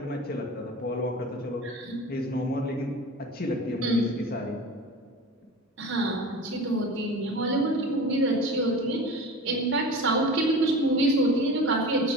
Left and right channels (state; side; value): normal; both; correlation 0.35